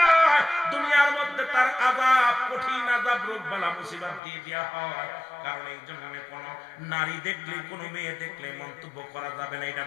দুনিয়ার মধ্যে তার আযাব, কঠিন আযাব, রোগ বালা মুসিবত দিয়ে দেওয়া হয়। কারণ এই জন্য কোন নারী দেখলে, কোন মেয়ে দেখলে মন্তব্য করা যাবে না এটা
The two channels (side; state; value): right; drops out; at 4.2 s